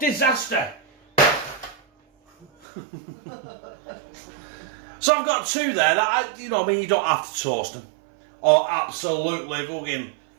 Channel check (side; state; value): left; drops out; at 2.5 s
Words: So I've got 2 there that, you know, I mean, you don't have to toast them or absolutely fucking